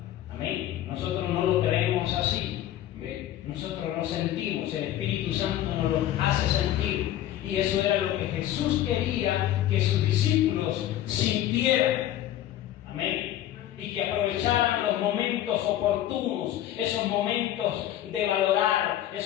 Amén. Nosotros no lo creemos así. Nosotros lo sentimos, el Espíritu Santo nos lo hace sentir. Y eso era lo que Jesús quería que sus discípulos sintieran. Amén. Y que aprovecharan los momentos oportunos, esos momentos de valorar,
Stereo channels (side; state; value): right; quieter; 12.5 dB